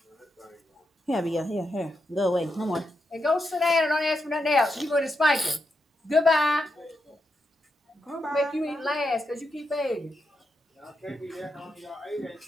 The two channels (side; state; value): both; normal; correlation 0.84